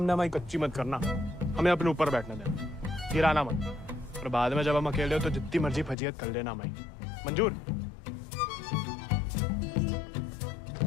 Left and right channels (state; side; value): drops out; right; at 6.0 s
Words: हमारी कच्ची मत करना। हमें अपने ऊपर बैठने देना, गिराना मत। और बाद में जब हम अकेले हो तो जितनी मर्जी फजीयत कर लेना हमारी। मंजूर?